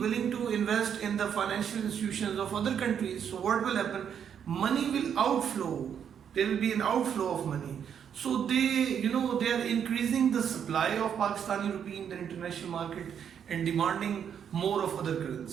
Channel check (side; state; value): left; quieter; 8.2 dB